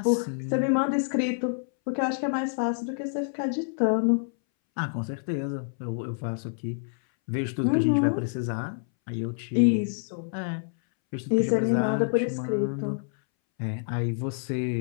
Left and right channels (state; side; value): silent; right; 60 dB below the other